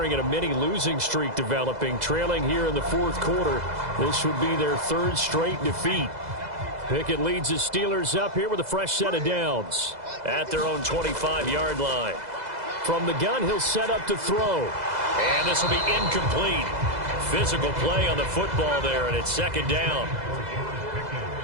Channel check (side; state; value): left; late; 2.0 ms